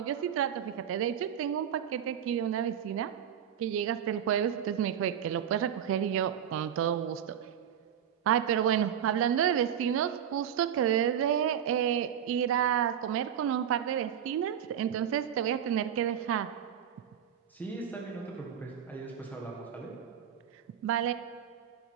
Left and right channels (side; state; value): left; quieter; 9.2 dB